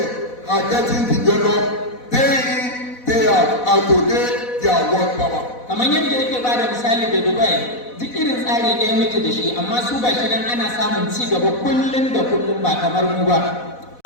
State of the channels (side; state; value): right; late; 4.1 ms